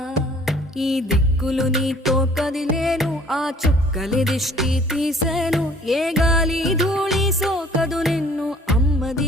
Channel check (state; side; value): normal; both; correlation 0.54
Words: ఈ దిక్కులు నీతో కదిలేను ఆ చుక్కలి దిష్టి తీసేను ఏ గాలి ధూళి సోకదు నిన్ను